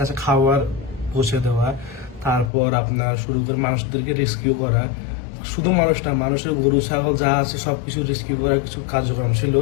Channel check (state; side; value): drops out; right; at 2.5 s